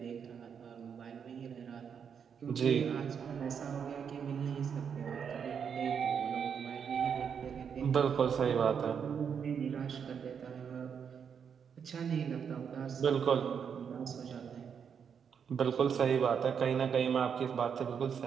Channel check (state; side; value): quieter; left; 7.2 dB